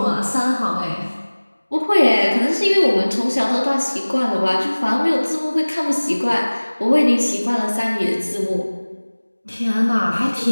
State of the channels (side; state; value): both; inverted; correlation -1.00